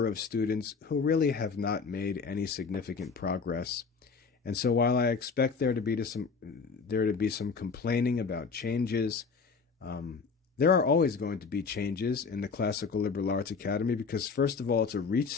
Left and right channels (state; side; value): quieter; right; 5.1 dB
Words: of students who really have not made any significant progress. And so while I expect there to be some complaining about changes, there are always going to be changes in the Classical Liberal Arts Academy because, first of all, it's a